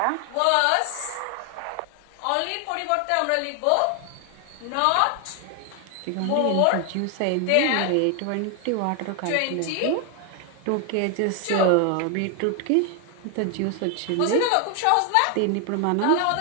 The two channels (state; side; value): different; both; correlation 0.00